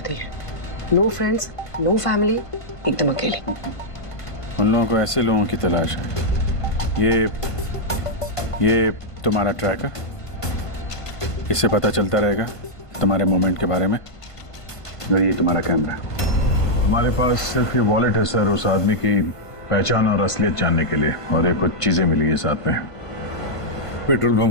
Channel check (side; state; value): right; late; 1.5 ms